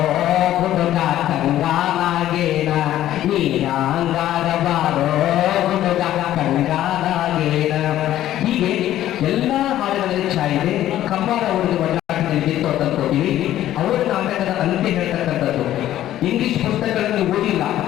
ಹುಡುಗ ಕಂಗಾನಾಗೇನ, ನೀ ಯಾಂಗಾರ ಬಾರೋ ಹುಡುಗ ಕಂಗಾನಾಗೇನ. ಹೀಗೆ ಎಲ್ಲ ಹಾಡುಗಳಲ್ಲಿ ಛಾಯಿದೆ. ಕಂಬಾರ ಅವರಿಗೆ ಒಳ್ಳಾಟದಲ್ಲಿ ತೋಟಲ್ಕೋತೀವಿ. ಅವರ ನಾಟಕದ ಅಂತ್ಯ ಹೇಳ್ತಕ್ಕಂಥದ್ದು. ಇಂಗ್ಲಿಷ್ ಪುಸ್ತಕಗಳನ್ನು ಓದಿಲ್ಲ,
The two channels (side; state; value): right; quieter; 13.0 dB